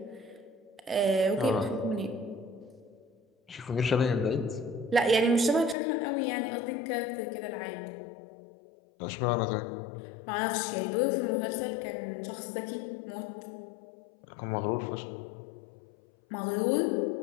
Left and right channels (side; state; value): right; drops out; at 5.8 s